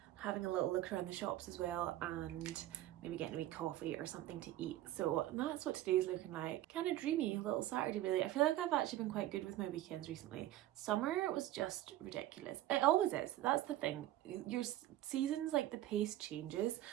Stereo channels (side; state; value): left; quieter; 14.3 dB